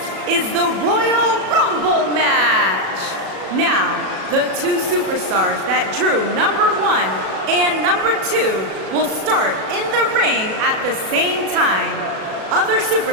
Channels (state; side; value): late; left; 37 ms